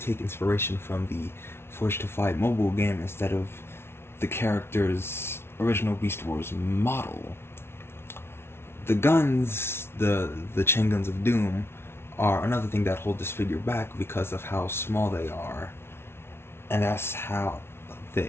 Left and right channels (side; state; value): right; late; 0.12 ms